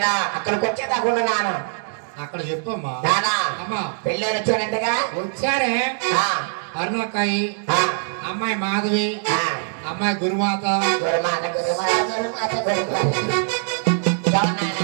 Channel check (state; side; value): silent; left; digital silence